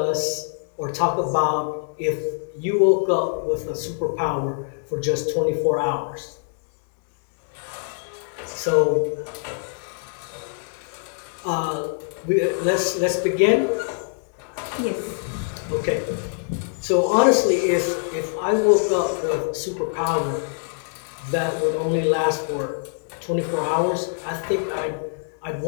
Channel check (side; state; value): right; silent; digital silence